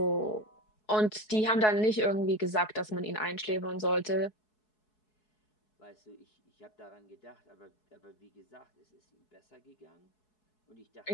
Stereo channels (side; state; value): right; late; 4.7 ms